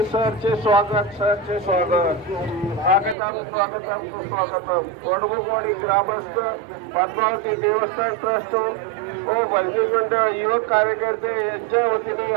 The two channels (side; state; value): left; drops out; at 3.2 s